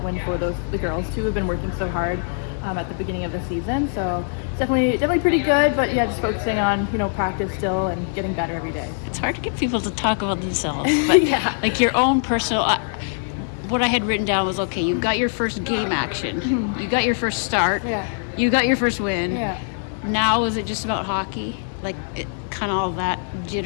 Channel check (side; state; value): right; silent; digital silence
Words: win for the girls too, who've been working so hard at the beginning of the season. So it's definitely pretty good, but yeah, just focusing on practice still and getting better every day. It's hard to get people to talk about themselves, but Yeah. like your own personal. What I had written down was, okay, you got your first game action, you got your first start, Yeah. you got your first win. Yeah. Now is it just about hockey? Like kind of all that